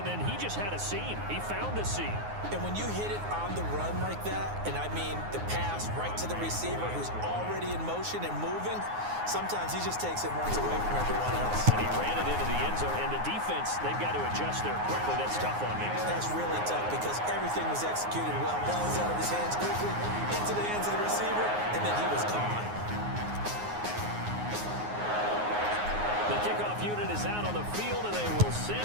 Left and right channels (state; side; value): late; left; 9.6 ms